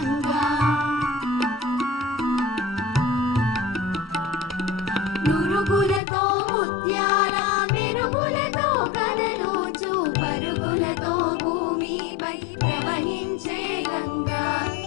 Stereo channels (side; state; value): right; drops out; at 6.0 s